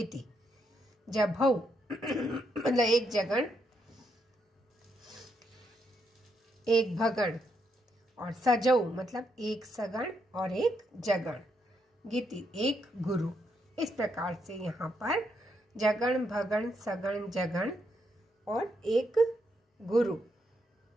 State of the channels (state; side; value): normal; both; correlation 0.78